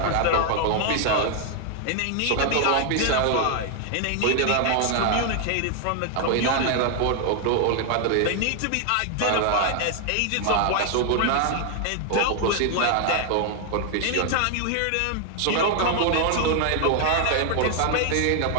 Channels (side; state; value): both; different; correlation 0.00